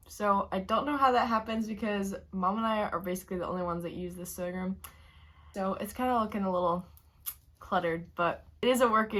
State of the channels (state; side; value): identical; both; correlation 1.00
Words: So I don't know how that happens because Mom and I are basically the only ones that use this sewing room. So it's kind of looking a little cluttered, but it is a